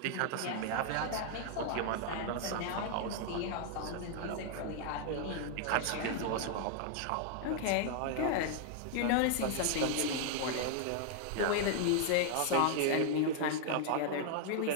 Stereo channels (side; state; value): both; different; correlation 0.00